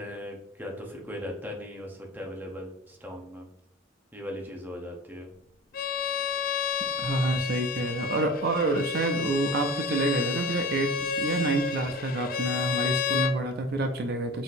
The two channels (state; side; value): normal; both; correlation 0.36